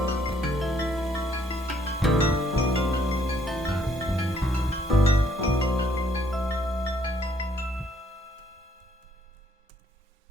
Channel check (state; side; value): normal; both; correlation 0.67